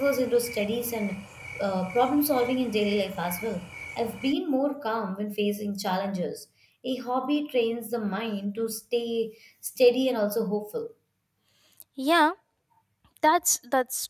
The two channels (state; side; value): identical; both; correlation 1.00